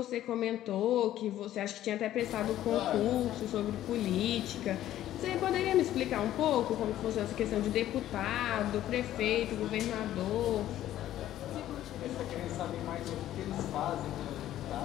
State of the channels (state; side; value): quieter; right; 12.9 dB